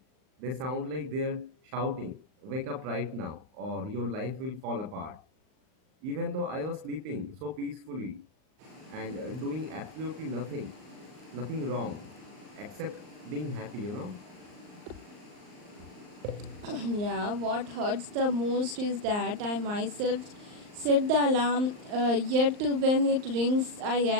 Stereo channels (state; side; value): late; left; 39 ms